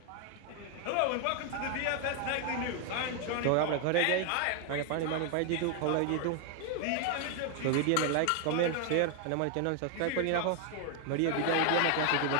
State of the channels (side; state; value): both; different; correlation 0.00